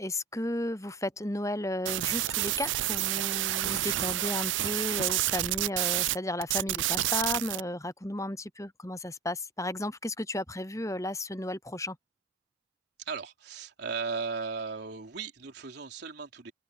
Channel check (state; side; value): quieter; left; 4.6 dB